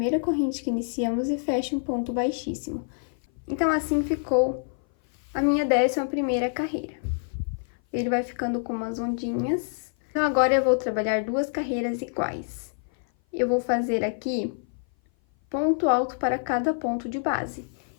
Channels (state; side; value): silent; right; 57 dB below the other